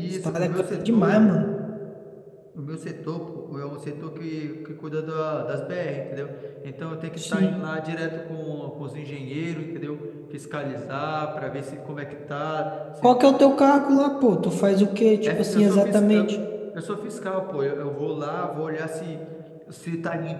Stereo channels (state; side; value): identical; both; correlation 1.00